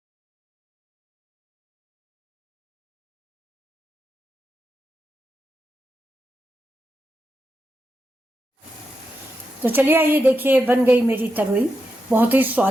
तो चलिए ये देखिए बन गई मेरी तरोई। बहुत ही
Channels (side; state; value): both; normal; correlation 0.87